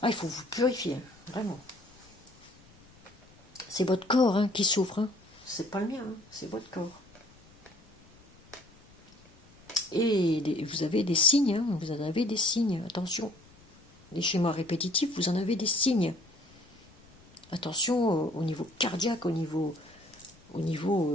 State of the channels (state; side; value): noise; left; rumble, 27 dB below the sound